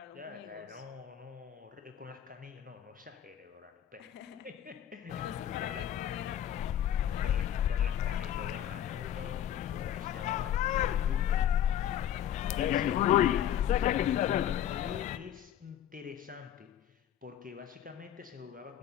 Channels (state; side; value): quieter; right; 10.6 dB